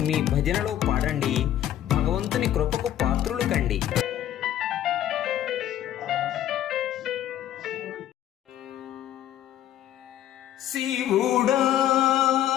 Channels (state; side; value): quieter; right; 11.8 dB